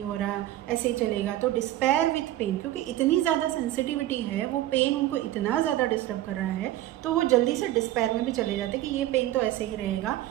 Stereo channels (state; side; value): quieter; left; 14.5 dB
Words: हो रहा, ऐसे ही चलेगा। तो डिस्पेयर विथ पेन, क्योंकि इतनी ज़्यादा सेंसिटिविटी है, वो पेन उनको इतना ज़्यादा डिस्टर्ब कर रहा है, तो वो जल्दी से डिस्पेयर में भी चले जाते हैं कि ये पेन तो ऐसे ही रहेगा,